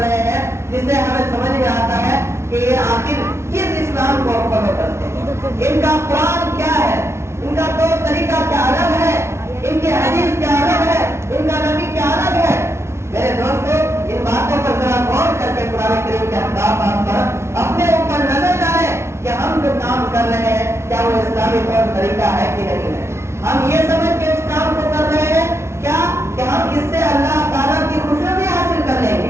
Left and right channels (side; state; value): left; late; 0.13 ms